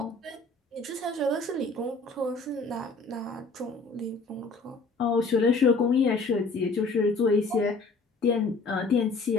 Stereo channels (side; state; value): right; quieter; 3.7 dB